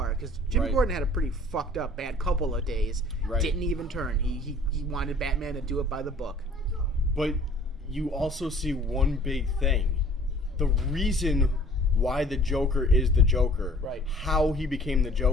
because Jim Right. Gordon had a pretty fucked up bad couple of days. Right. Didn't even turn. He wanted Batman to do it by the book. But you also see one big thing. The reason why the Joker is the Joker. Right. How he became the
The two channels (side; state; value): both; normal; correlation 0.51